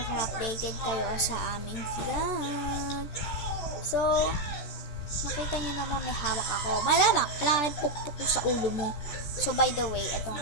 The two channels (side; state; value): right; late; 14 ms